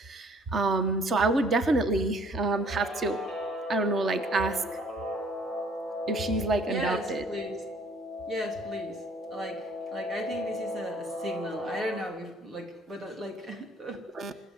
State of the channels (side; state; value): both; normal; correlation 0.58